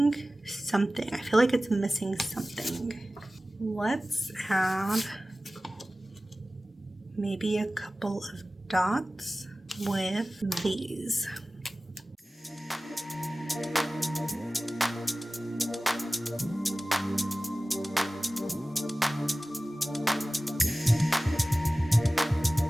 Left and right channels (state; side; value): normal; both; correlation 0.97